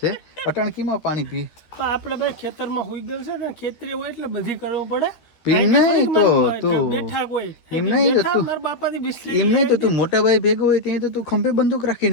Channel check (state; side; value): late; right; 13 ms